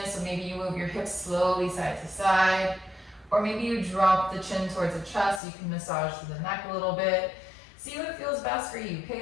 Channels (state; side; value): drops out; right; at 5.4 s